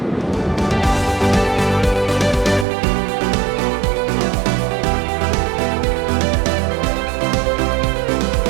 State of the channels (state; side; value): drops out; left; at 2.7 s